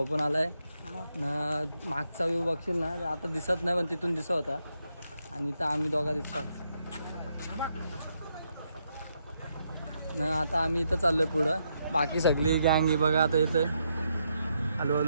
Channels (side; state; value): both; inverted; correlation -0.79